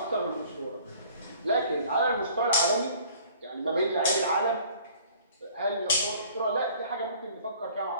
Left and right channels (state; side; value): inverted; both; correlation -0.52